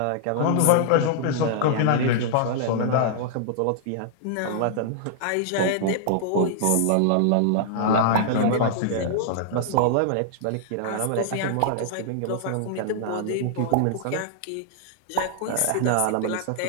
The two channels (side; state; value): both; different; correlation -0.01